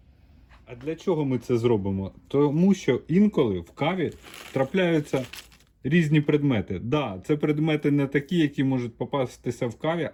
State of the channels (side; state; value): both; identical; correlation 1.00